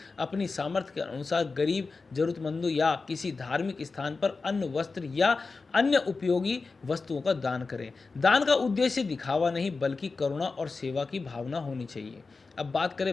अपनी सामर्थ्य के अनुसार गरीब, जरूरतमंदों या किसी धार्मिक स्थान पर अन्न, वस्त्र या अन्य उपयोगी वस्तुओं का दान करें। दान का उद्देश्य दिखावा नहीं बल्कि करुणा और सेवा की भावना होनी चाहिए। अब बात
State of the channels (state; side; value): quieter; right; 4.2 dB